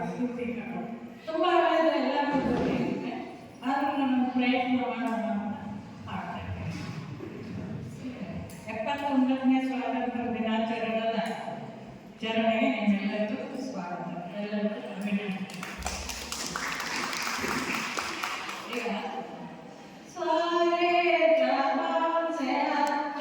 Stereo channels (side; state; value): both; identical; correlation 1.00